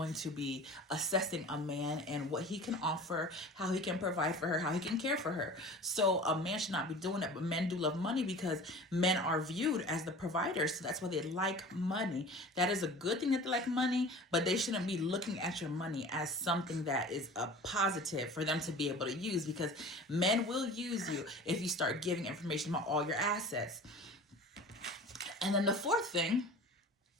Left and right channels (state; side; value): normal; both; correlation 0.40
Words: to be assessing a man and what he can offer, how he can provide for her, how he can care for her. So a man should not be doing that. But men do love money because men are viewed as the providers. So that's why they like money. That is a good thing that they like money, but they shouldn't be looking at your money as something that is a positive for them to be able to use, because men will use you if you start giving information about all your assets. And then the fourth thing,